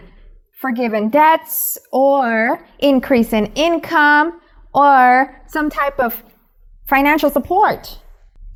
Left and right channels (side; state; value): both; identical; correlation 1.00